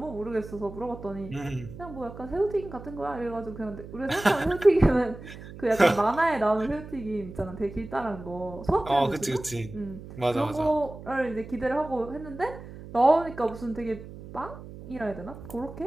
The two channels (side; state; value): right; noise; hum, 14 dB below the sound